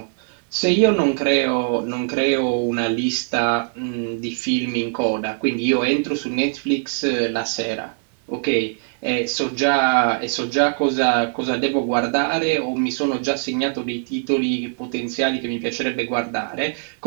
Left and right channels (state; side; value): silent; left; 64 dB below the other